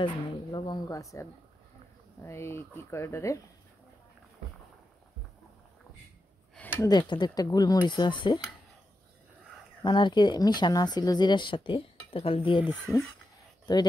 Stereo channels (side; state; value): both; normal; correlation 0.88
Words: নেই, লবঙ্গ আছে, আর এই কী কয় ওটারে দু একটা গোলমরিচও আছে, মানে আর কি মিশানো আছিল জিরার সাথে, তো খালি দিয়ে দিছি। তো